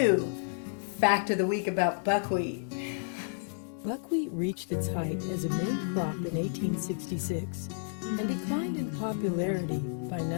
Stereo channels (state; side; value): silent; right; digital silence